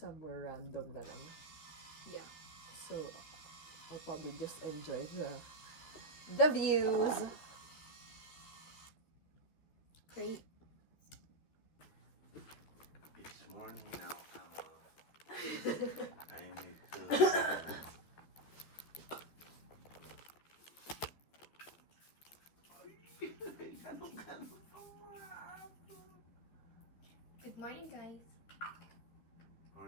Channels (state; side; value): late; right; 13 ms